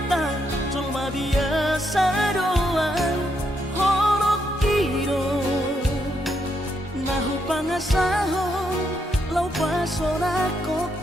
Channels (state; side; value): normal; both; correlation 0.78